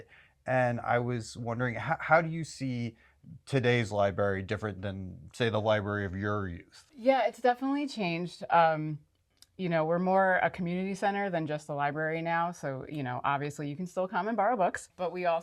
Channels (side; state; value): both; identical; correlation 1.00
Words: And I was wondering, how do you see today's library different than, say, the library of your youth? Yeah, it's definitely changed. We're more a community center than just a library now. So, obviously you can still come and borrow books, but we